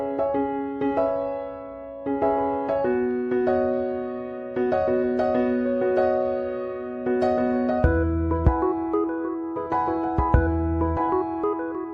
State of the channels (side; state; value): both; identical; correlation 1.00